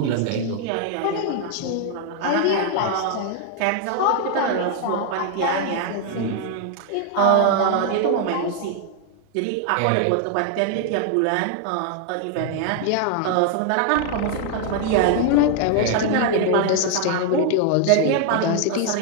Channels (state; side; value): different; both; correlation 0.00